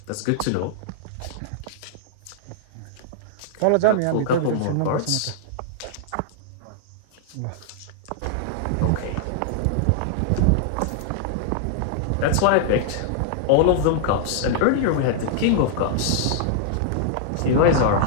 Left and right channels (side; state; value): both; different; correlation -0.01